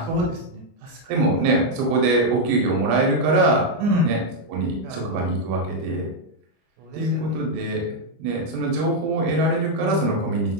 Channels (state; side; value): late; left; 25 ms